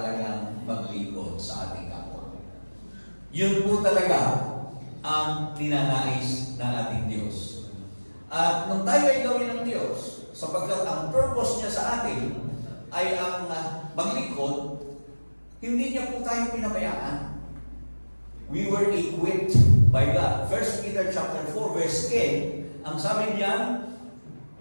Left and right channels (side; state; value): both; inverted; correlation -1.00